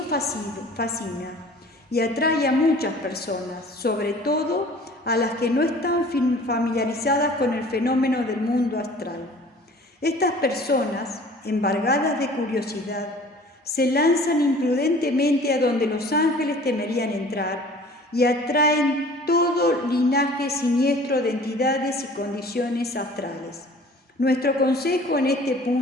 fascina y atrae a muchas personas, sobre todo a las que no están familiarizadas con el fenómeno del mundo astral. Estas personas, embargadas de curiosidad, se lanzan imprudentemente a donde los ángeles temerían entrar y atraen todo linaje siniestro de entidades y condiciones astrales. Nuestro consejo en este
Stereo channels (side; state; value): both; normal; correlation 0.48